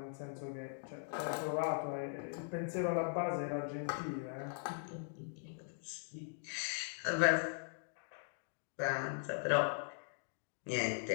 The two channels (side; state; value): right; silent; digital silence